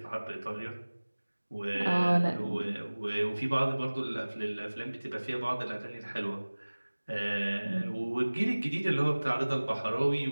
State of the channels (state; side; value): inverted; both; correlation -1.00